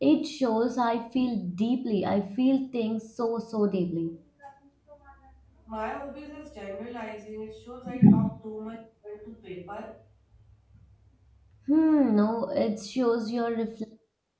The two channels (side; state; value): both; identical; correlation 1.00